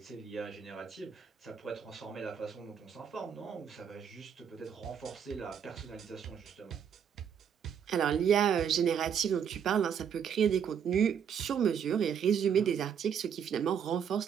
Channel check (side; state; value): left; quieter; 7.8 dB